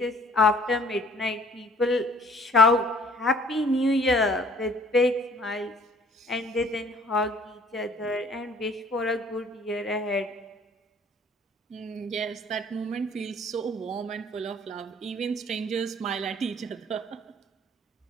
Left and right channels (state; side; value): normal; both; correlation 0.55